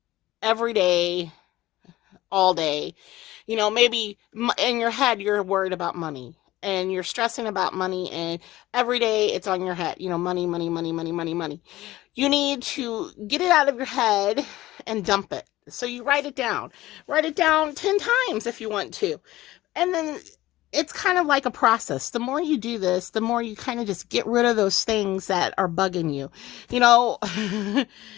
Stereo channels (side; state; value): right; quieter; 16.6 dB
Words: every day, all day. Maybe in your head you're worried about money, and you're stressing about money, and every day it's on your head. Money, money, money, money, money, money. You need to get it out of your head and dump it. So you write it down. Write it down 10 times if you want to. And then it's kind of like a process. The more you do this, the more you kind of just get rid of those things that are bugging you.